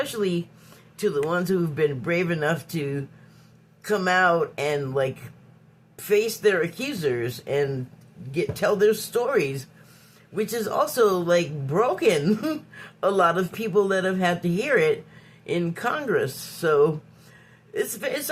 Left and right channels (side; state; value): both; identical; correlation 1.00